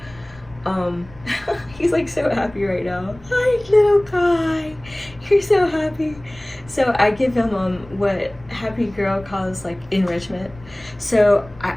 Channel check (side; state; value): left; noise; rumble, 22 dB below the sound